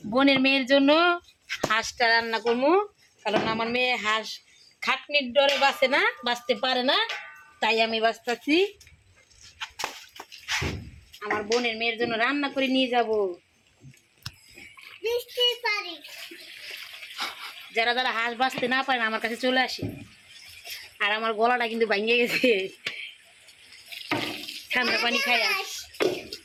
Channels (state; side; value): identical; both; correlation 1.00